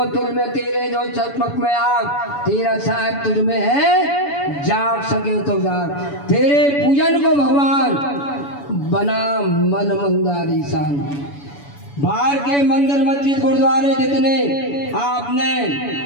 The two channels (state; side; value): late; right; 7.0 ms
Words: तुल में तेरे जो चकमक में आग, तेरा साहेब तुझ में है, जाग सके तो जाग। तेरे पूजन को भगवान बना मन मंदारी सान। बाहर के मंदिर मस्जिद गुरुद्वारे जितने आपने